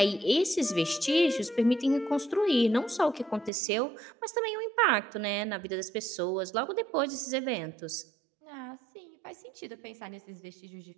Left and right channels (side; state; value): left; drops out; at 3.5 s